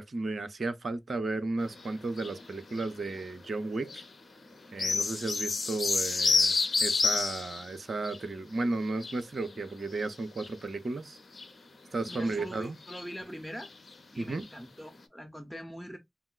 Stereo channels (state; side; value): normal; both; correlation 0.88